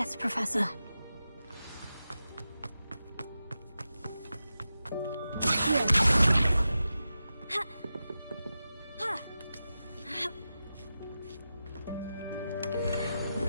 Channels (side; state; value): both; inverted; correlation -0.91